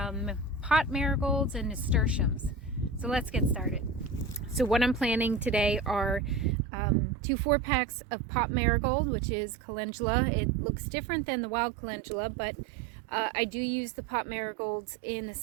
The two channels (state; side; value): drops out; left; at 6.6 s